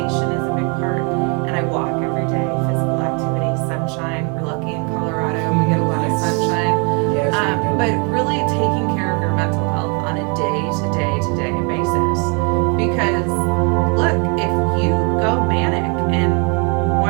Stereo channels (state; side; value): quieter; left; 34.9 dB